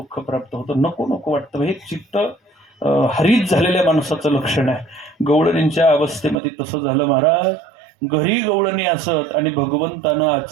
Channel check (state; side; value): drops out; left; at 6.4 s